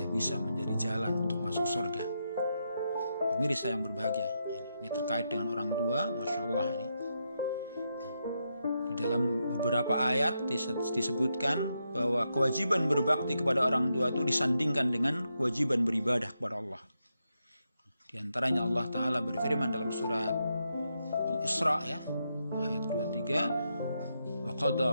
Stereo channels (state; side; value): inverted; both; correlation -0.83